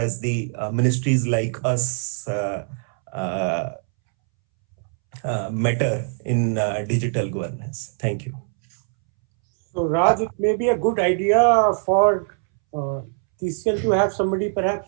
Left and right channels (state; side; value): silent; left; 64 dB below the other